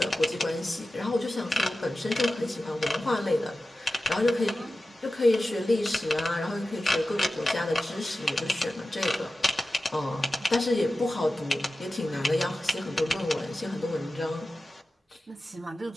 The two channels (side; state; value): both; normal; correlation 0.94